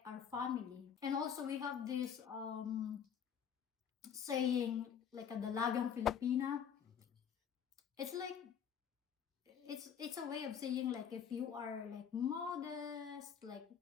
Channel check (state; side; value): quieter; right; 8.0 dB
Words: our family. And also we have this saying like a Dalagang Filipina. It's like it's a way of saying like if you are like modest, like